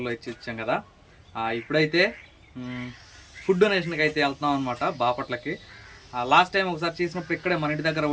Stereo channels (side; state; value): both; identical; correlation 1.00